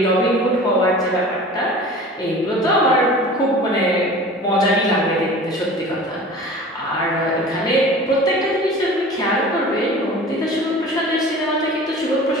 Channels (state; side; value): normal; both; correlation 0.40